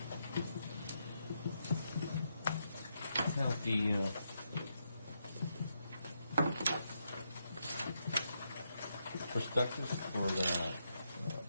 Now, the prospectus for the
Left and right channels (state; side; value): inverted; both; correlation -0.81